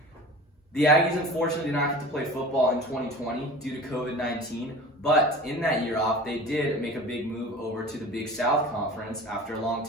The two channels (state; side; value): normal; both; correlation 0.38